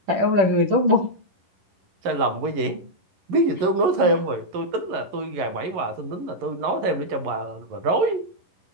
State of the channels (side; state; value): left; late; 11 ms